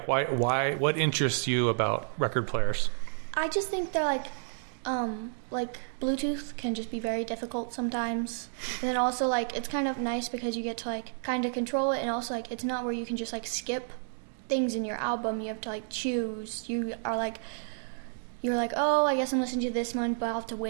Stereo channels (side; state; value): left; silent; digital silence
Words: why, what interests you about record players? I just think they're like Bluetooth can just be very difficult sometimes. And then also, like, it's kind of nice because you get to, like, kind of control it. And also, like, it's not where you can just, like, skip things in your album. You have to, like, choose. You're like, oh, I guess I'm listening to this one, but I'll have to